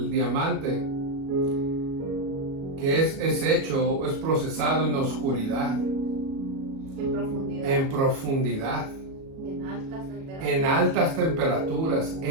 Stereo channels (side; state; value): left; late; 37 ms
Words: diamante que es hecho, es procesado en la oscuridad, en profundidad, en altas temperaturas,